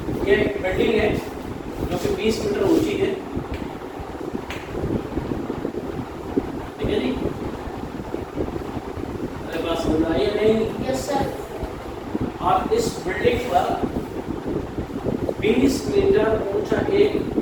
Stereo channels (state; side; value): identical; both; correlation 1.00